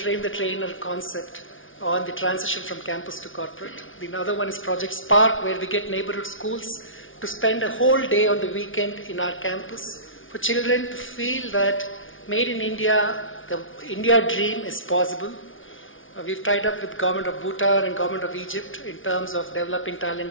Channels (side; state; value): right; late; 0.57 ms